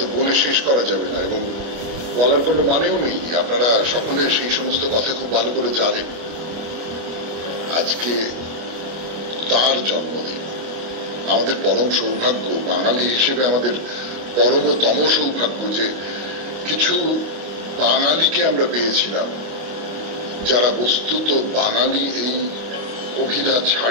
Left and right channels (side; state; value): left; late; 25 ms